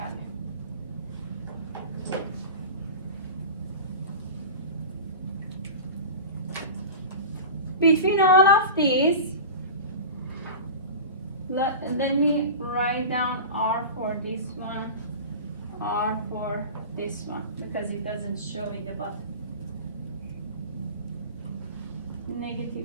Between all of these, let me write down R for this one, R for this one, because it doesn't show in the bottom.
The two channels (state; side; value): inverted; both; correlation -0.32